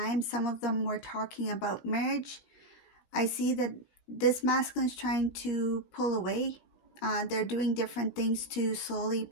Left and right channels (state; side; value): late; right; 16 ms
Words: Some of them were talking about marriage. I see that this masculine is trying to pull away. They're doing different things to slowly